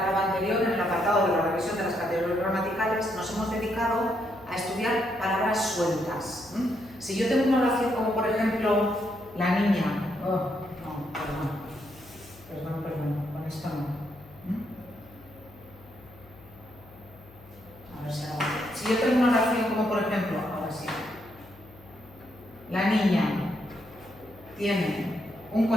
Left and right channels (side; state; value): left; noise; hum, 23 dB below the sound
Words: anterior, en el apartado de la revisión de las categorías gramaticales, nos hemos dedicado a estudiar palabras sueltas. Si yo tengo una oración como, por ejemplo, la niña... Perdón, con esto no. A ver si ahora... Si yo tengo una oración como, por ejemplo, ahora sí. La niña tiene un